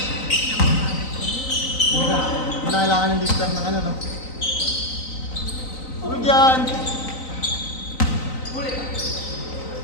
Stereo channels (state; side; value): late; right; 3.9 ms